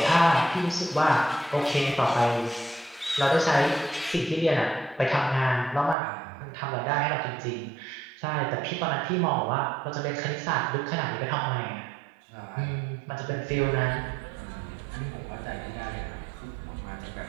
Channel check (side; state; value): left; drops out; at 6.0 s